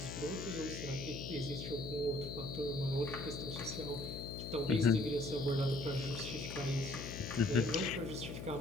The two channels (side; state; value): left; noise; hum, 7 dB below the sound